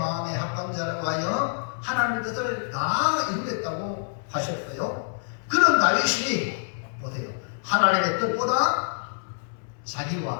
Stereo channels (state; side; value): silent; right; 61 dB below the other